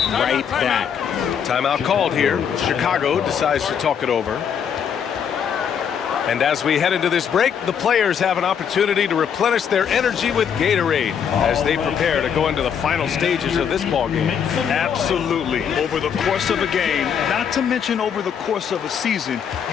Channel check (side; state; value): right; quieter; 7.7 dB